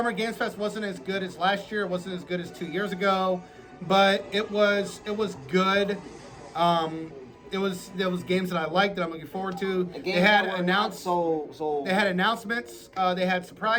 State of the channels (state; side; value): identical; both; correlation 1.00